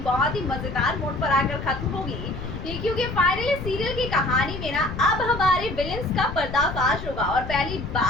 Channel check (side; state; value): left; noise; rumble, 8 dB below the sound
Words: बहुत ही मजेदार मोड पर आकर खत्म होगी, क्योंकि फाइनली सीरियल की कहानी में ना अब हमारे विलेंस का पर्दाफाश होगा और पहली